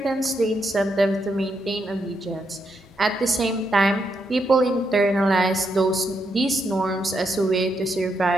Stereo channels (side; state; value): both; normal; correlation 0.80